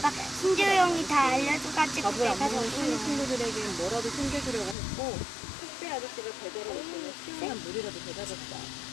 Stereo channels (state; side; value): drops out; right; at 4.8 s